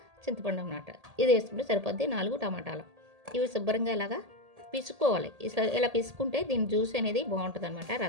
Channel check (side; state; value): left; late; 1.8 ms